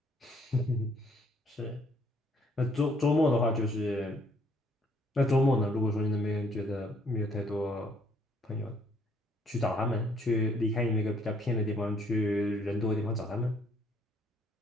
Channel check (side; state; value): both; normal; correlation 0.65